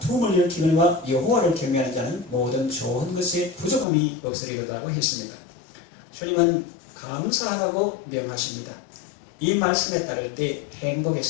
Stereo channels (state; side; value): drops out; right; at 3.9 s